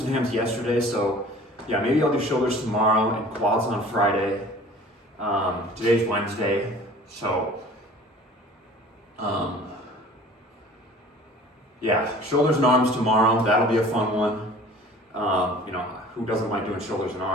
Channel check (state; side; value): normal; both; correlation 0.46